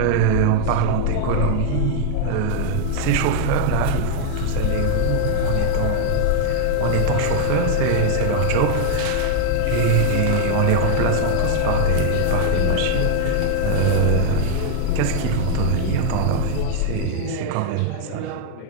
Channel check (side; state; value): both; different; correlation 0.00